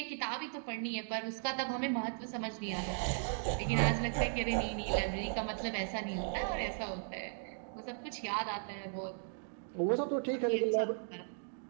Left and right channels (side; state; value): left; silent; digital silence